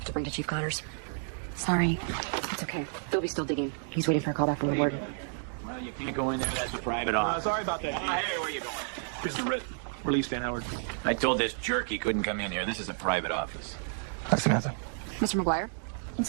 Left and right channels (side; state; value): left; silent; 57 dB below the other